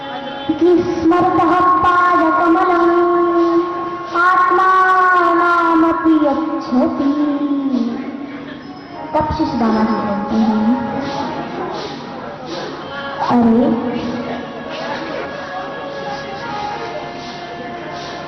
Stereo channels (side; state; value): both; identical; correlation 1.00